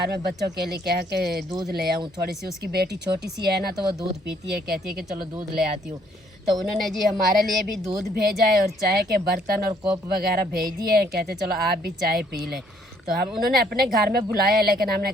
में बच्चों के लिए कह के दूध ले आऊँ थोड़ी सी। उसकी बेटी छोटी सी है ना तो वो दूध पीती है, कहती है कि चलो दूध ले आती हूँ। तो उन्होंने जी हमारे लिए भी दूध भेजा है और चाय के बर्तन और कोप वगैरह भेज दिए हैं, कहते चलो आप भी चाय पी लें। तो हम उन्होंने अपने घर में बुलाया लेकिन हमने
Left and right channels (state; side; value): normal; both; correlation 0.65